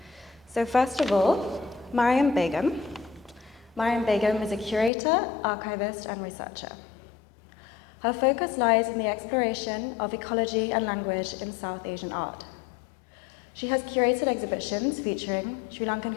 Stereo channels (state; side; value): drops out; right; at 4.9 s